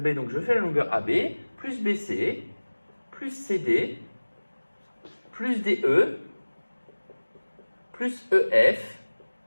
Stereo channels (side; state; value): both; inverted; correlation -1.00